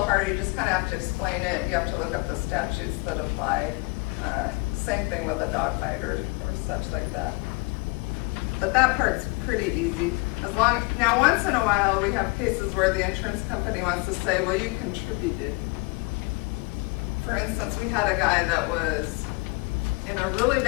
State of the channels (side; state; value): right; quieter; 27.7 dB